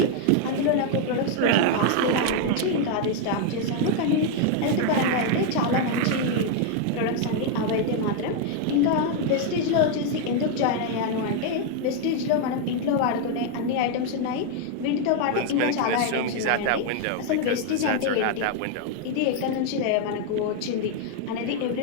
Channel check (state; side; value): different; both; correlation 0.00